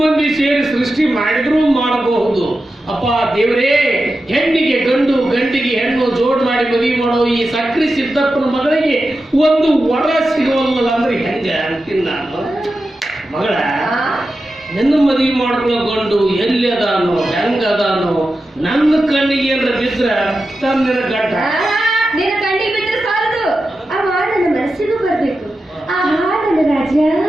ಮಂದಿ ಸೇರಿ ಸೃಷ್ಟಿ ಮಾಡಿದ್ರೂ ಮಾಡಬಹುದು. ಅಪ್ಪ ದೇವರೇ, ಹೆಣ್ಣಿಗೆ ಗಂಡು, ಗಂಡಿಗೆ ಹೆಣ್ಣು ಜೋಡ್ ಮಾಡಿ ಮದುವೆ ಮಾಡೋ ಈ ಸಕ್ರಿ ಸಿದ್ದಪ್ಪನ ಮಗಳಿಗೆ ಒಂದು ವರ ಸಿಗೋಲ್ಲ ಅಂದ್ರೆ ಹೆಂಗ ಅಂತೀನಿ ನಾನು. ಮಗಳ, ನನ್ನ ಮದುವೆ ಮಾಡ್ಕೊಳ್ಳೋ ಗಂಡು ಎಲ್ಲಿ ಅದಾನೋ, ಹೆಂಗದಾನೋ, ನನ್ನ ಕಣ್ಣಿಗೆ ಏನಾರ ಬಿದ್ರ ತನ್ನ ಗಂಡ ನಿನ್ನ ಕಣ್ಣಿಗೆ ಬಿದ್ರೆ ಸಾಲದು, ಆ ನನ್ನ ಮನಸ್ಸಿಗೂ ಬರ್ಬೇಕು. ಆ ನನ್ನ ರಾಜ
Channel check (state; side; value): normal; both; correlation 0.91